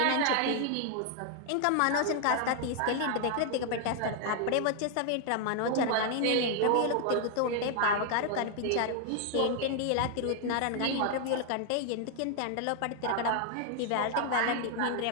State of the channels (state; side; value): different; both; correlation 0.00